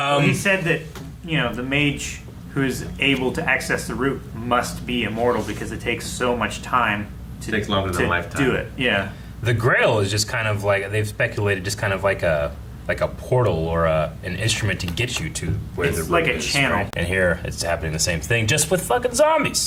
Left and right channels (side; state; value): both; identical; correlation 1.00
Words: He said that the mage who is able to access the root must be immortal because it takes so much time It takes longer than a lifetime. do it. Yeah. The Grail is just kind of like, they've speculated, just kind of like a portal or an instrument to get you to where It's the root like a is, channel. right? And here it's happening the same thing, just with fucking